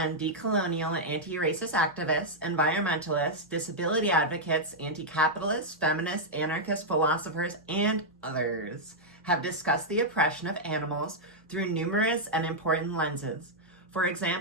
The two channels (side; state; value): both; normal; correlation -0.06